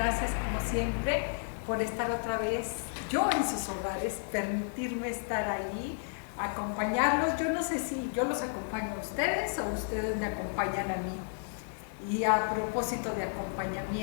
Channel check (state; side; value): silent; right; digital silence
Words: siempre por estar otra vez yo en sus hogares, permitirme estar ahí, acompañarlos. Yo no sé si yo los acompaño a ustedes o ustedes me acompañan a mí. Y a propósito de